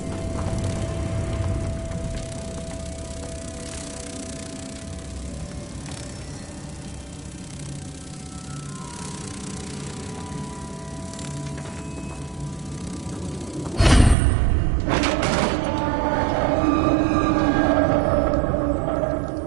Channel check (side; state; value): left; drops out; at 14.2 s